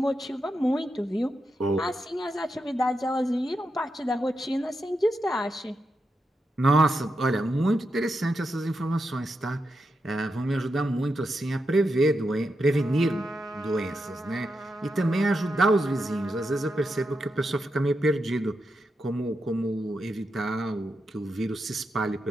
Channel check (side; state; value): both; normal; correlation 0.86